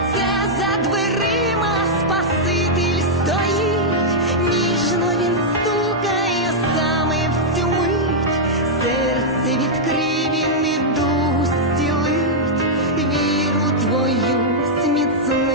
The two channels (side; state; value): both; normal; correlation -0.06